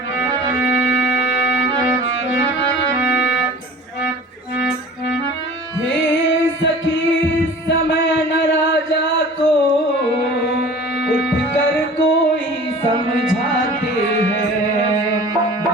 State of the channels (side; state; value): both; normal; correlation 0.43